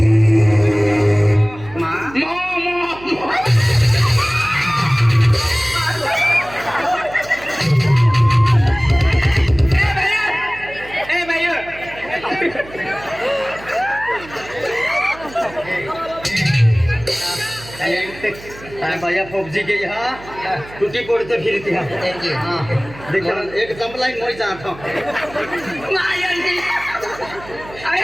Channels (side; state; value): right; noise; hum, 18 dB below the sound